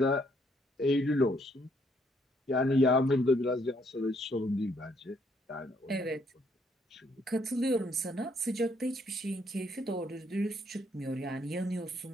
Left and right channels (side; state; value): both; normal; correlation 0.70